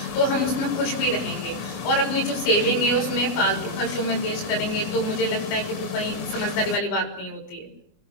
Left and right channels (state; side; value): late; right; 24 ms